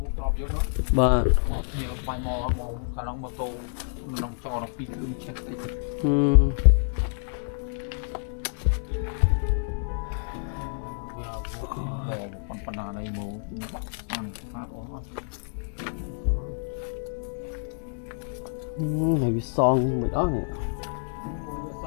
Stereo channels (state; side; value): silent; right; digital silence